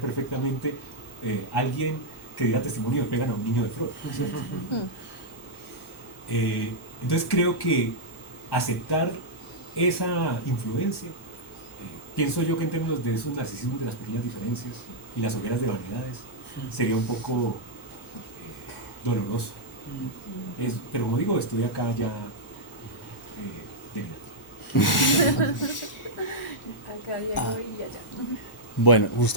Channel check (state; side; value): normal; both; correlation -0.08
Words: alguien que diera testimonio de pegan a un niño de Freud, ¿cierto? Entonces creo que aceptar esa influencia, pienso yo que en términos de esos narcisismos de las pequeñas diferencias y las hogueras de vanidades, sería un poco doloroso. Pero como digo, estoy acá ya Acá llego y allá. Bueno,